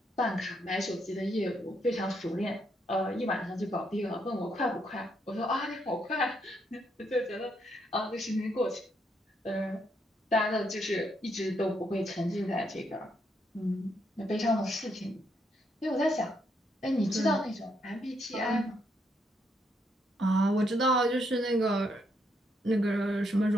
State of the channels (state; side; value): normal; both; correlation 0.76